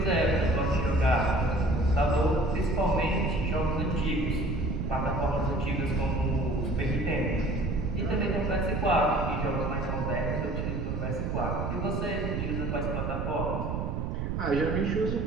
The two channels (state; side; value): noise; right; rumble, 1 dB below the sound